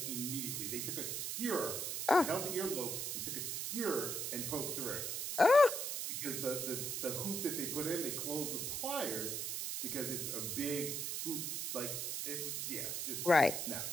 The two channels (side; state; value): right; noise; hiss, 2 dB below the sound